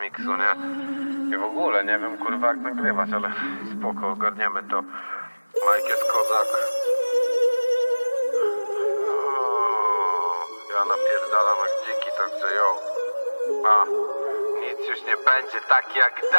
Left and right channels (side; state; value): both; inverted; correlation -1.00